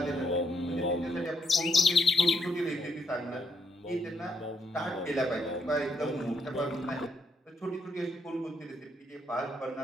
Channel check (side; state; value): both; normal; correlation 0.76